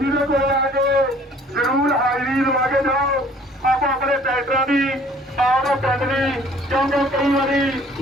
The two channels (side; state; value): both; normal; correlation 0.55